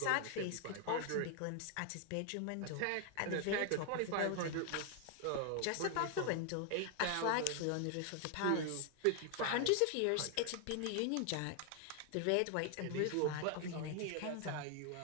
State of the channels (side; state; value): both; different; correlation 0.00